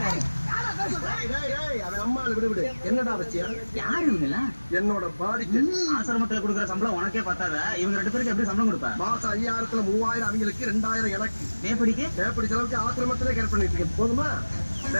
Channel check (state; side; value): inverted; both; correlation -1.00